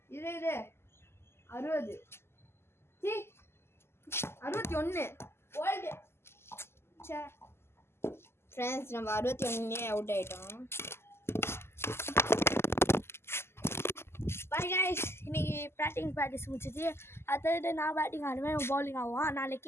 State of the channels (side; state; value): right; late; 0.12 ms